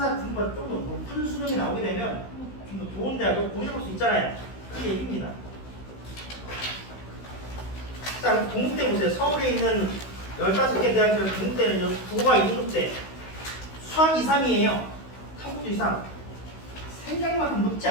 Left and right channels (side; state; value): right; late; 16 ms